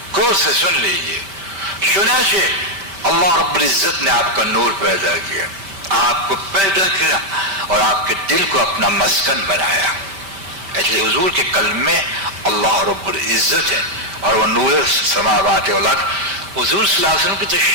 غور سے سن لیجیے. چنانچہ اللہ رب العزت نے آپ کا نور پیدا کیا، آپ کو پیدا کیا اور آپ کے دل کو اپنا مسکن بنایا. اس لیے حضور کے قلب میں اللہ رب العزت ہے، اور وہ نور سماوات والارض. حضور صلی اللہ علیہ وسلم کی تو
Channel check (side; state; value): left; late; 5.1 ms